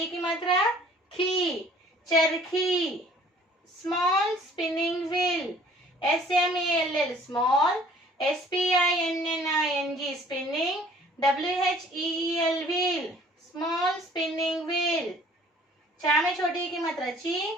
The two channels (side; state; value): both; normal; correlation 0.54